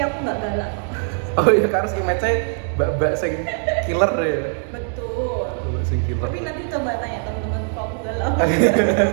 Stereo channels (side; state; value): left; silent; 56 dB below the other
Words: aku nggak galak kok. Oh iya Kak Ros image-nya mbak-mbak sing killer ya. Betul. Mbak sing killer. Tapi nanti coba tanya teman-temanku aku galak.